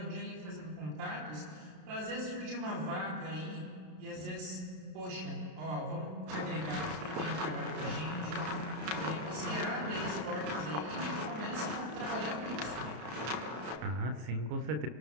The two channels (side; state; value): left; late; 33 ms